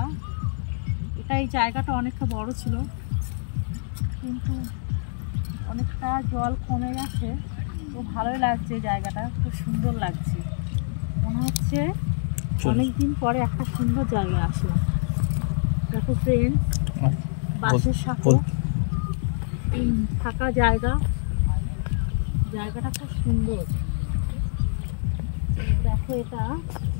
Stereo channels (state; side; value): silent; right; digital silence